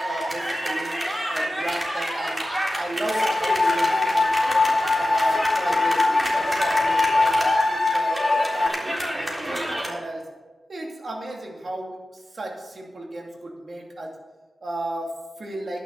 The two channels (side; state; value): both; normal; correlation 0.94